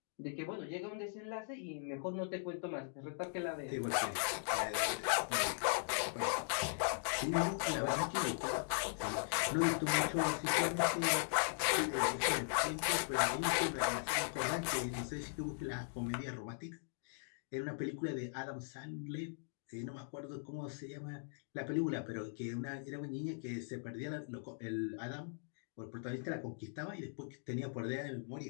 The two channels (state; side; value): silent; right; digital silence